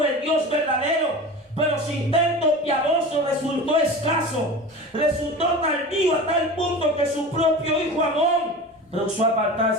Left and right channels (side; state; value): both; normal; correlation 0.33